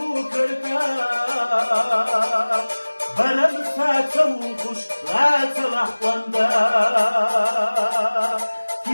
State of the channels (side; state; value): both; inverted; correlation -1.00